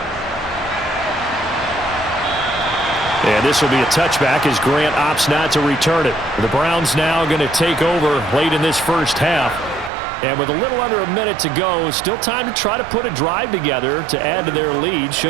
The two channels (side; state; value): left; drops out; at 9.9 s